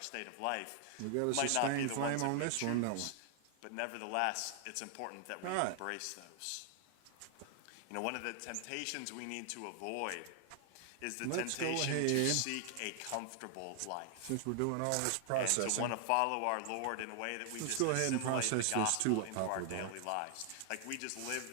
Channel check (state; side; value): different; both; correlation 0.00